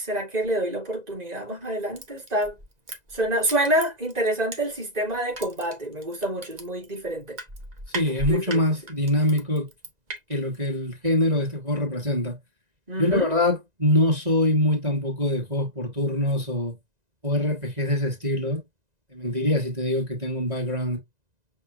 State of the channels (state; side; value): late; left; 1.9 ms